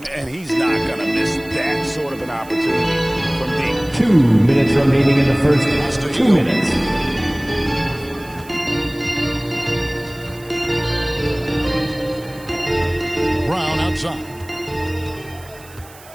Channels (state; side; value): noise; right; hiss, 22 dB below the sound